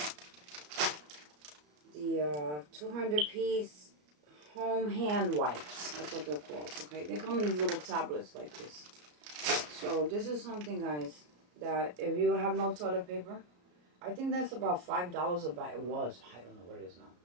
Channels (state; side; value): late; left; 34 ms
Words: 200-piece home hand wipes. That's what they're called, okay? They come in these little tablets like this. So this is something, guys, that if you have no toilet paper, I think that's about $5 a bag. It was. I don't know what it is now.